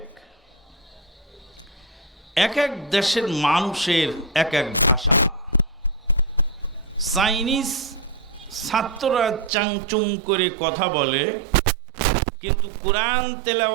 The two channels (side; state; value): left; drops out; at 9.5 s